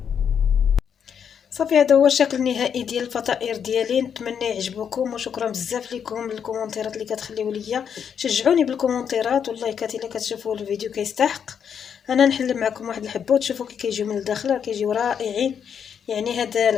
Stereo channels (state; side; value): quieter; right; 7.7 dB